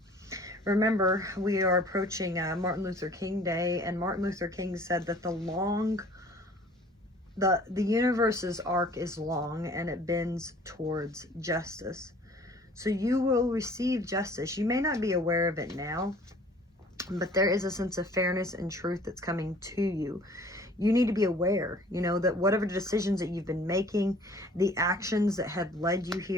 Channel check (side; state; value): both; normal; correlation 0.51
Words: Remember, we are approaching Martin Luther King Day, and Martin Luther King said that the universe's arc is long and it bends towards justice. So you will receive justice. You may not be aware of it now, but there is a sense of fairness and truth that's coming to you. You need to be aware, you know, that whatever decisions that you've been making, the actions that have led you